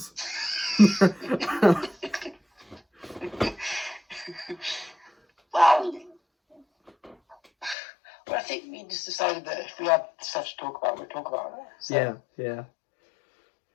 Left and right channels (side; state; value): right; drops out; at 7.8 s